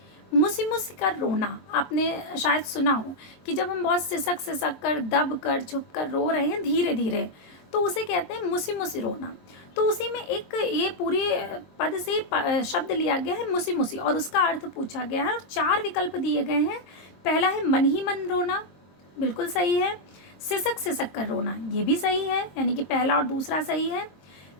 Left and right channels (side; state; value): right; late; 23 ms